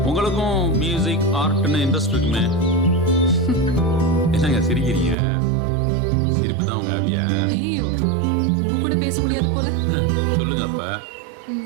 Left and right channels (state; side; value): drops out; left; at 5.2 s